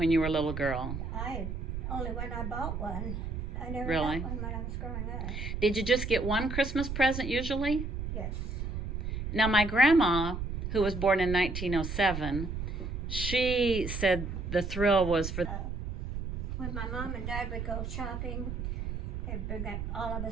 you were a little girl? Only when I bought one. I never Really? got one when I was growing up. Did you just get one Christmas present usually? Yes. Now, my grandma, who was born in 1907, she said the thrill was for... When my mom and dad would go shopping, they'd bring up all of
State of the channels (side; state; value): right; noise; rumble, 4 dB below the sound